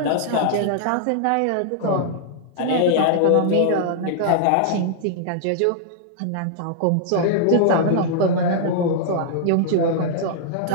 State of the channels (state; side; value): different; both; correlation -0.01